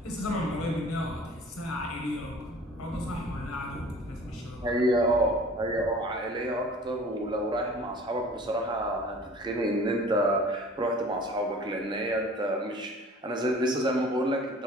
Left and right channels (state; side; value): normal; both; correlation 0.47